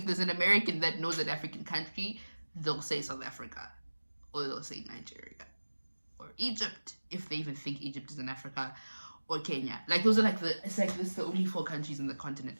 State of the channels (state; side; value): inverted; both; correlation -1.00